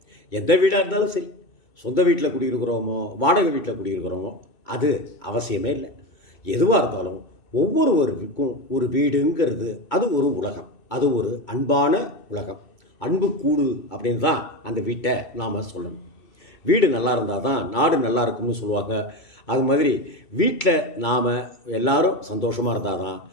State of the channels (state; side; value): late; right; 2.2 ms